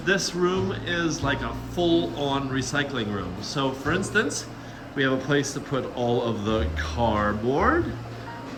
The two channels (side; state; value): both; identical; correlation 1.00